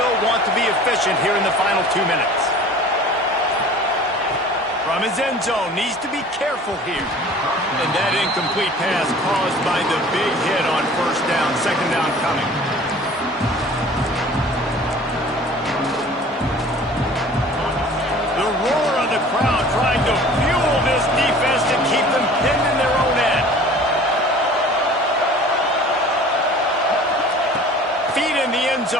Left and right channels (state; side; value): normal; both; correlation 0.46